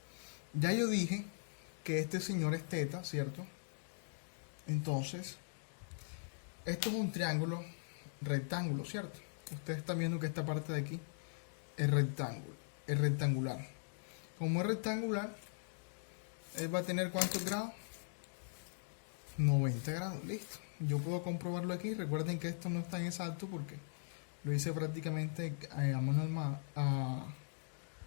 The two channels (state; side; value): silent; right; digital silence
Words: Ya yo dije que este señor es teta, ¿cierto? Entonces, esto es un triángulo rectángulo, ¿cierto? Ustedes están viendo que esta parte de aquí es rectangular. Como es rectangular, él va a tener ¿cuántos grados? 90 grados, listo. Yo puedo comprobarlo aquí. Recuerden que esto no es tan exacto porque lo hice prácticamente a